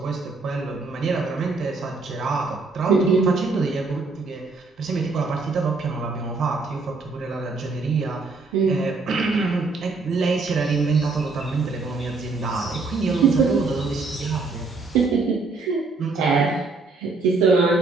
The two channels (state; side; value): quieter; left; 3.9 dB